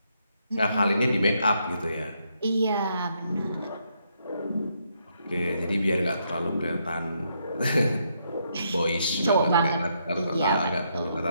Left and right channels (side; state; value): both; inverted; correlation -0.76